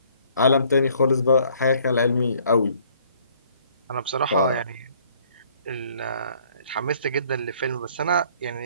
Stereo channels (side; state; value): both; inverted; correlation -0.61